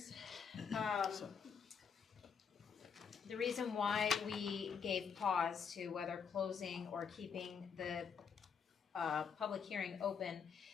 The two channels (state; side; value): quieter; right; 6.6 dB